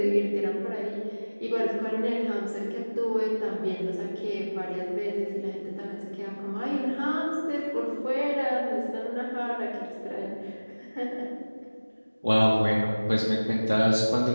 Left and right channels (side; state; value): both; inverted; correlation -1.00